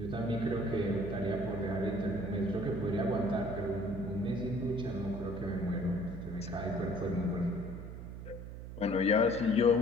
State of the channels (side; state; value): right; noise; hum, 10 dB below the sound